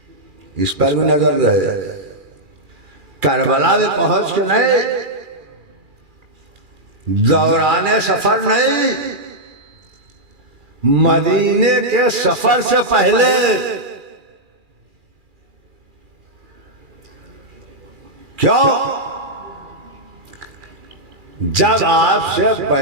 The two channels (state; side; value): late; left; 2.4 ms